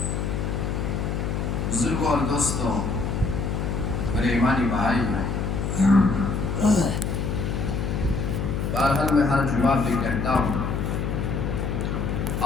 بزرگوں اور دوستوں، میرے ایمانی بھائی ہیں، بہرحال میں ہر جمعہ بھی کہتا ہوں،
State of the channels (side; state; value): left; noise; hum, 1 dB below the sound